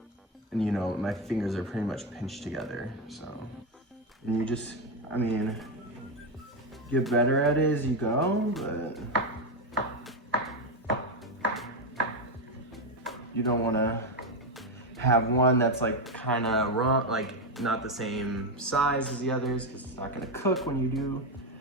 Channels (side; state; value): both; normal; correlation 0.09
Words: And you know, my fingers are pretty much pinched together, so. And you just, I mean, get better at it as you go, but you don't wanna have one that's like kinda wrong, like not the same size as the others, because it's not gonna cook when you do.